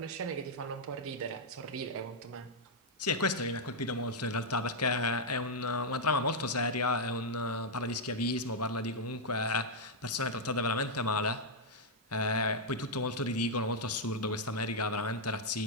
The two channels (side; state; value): both; normal; correlation -0.03